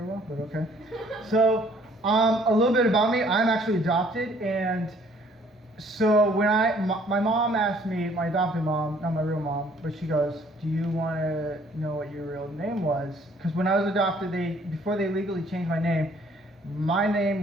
well, but okay. So, a little bit about me. I'm actually adopted, and so when my mom asked me, my adopted mom, not my real mom, but she goes, "Do you want to know what your real name was?" Because when I was adopted, before they legally changed my name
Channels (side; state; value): both; normal; correlation 0.60